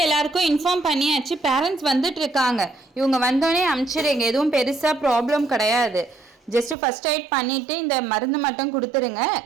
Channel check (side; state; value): left; drops out; at 6.8 s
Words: எல்லாருக்கும் இன்ஃபார்ம் பண்ணியாச்சு, பேரண்ட்ஸ் வந்துட்டு இருக்காங்க. இவங்க வந்தோடனே அனுப்பிச்சிடுங்க. எதுவும் பெருசாக ப்ராப்ளம் கிடையாது. ஜஸ்ட்டு ஃபர்ஸ்ட் எய்ட் பண்ணிவிட்டு இந்த மருந்து மட்டும் கொடுத்துருங்க.